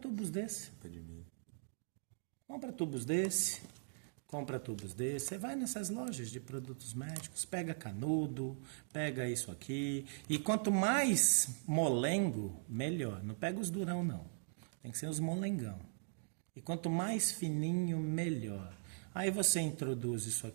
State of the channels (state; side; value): silent; left; digital silence